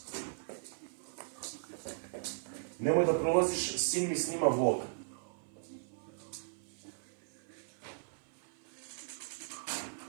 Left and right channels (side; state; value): left; silent; 53 dB below the other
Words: Nemoj da prolaziš, sin mi snima vlog.